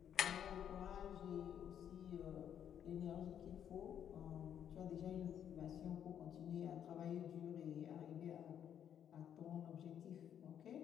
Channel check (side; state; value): right; quieter; 9.3 dB